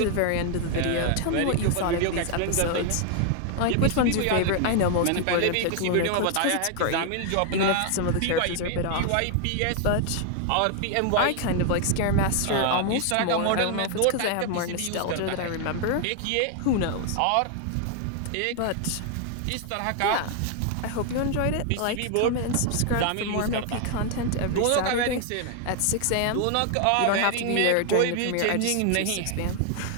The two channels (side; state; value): both; different; correlation 0.00